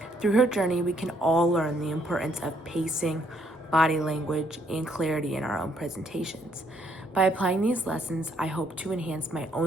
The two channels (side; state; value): both; normal; correlation 0.70